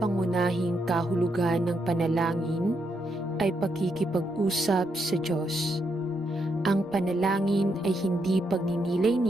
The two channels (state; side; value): normal; both; correlation 0.79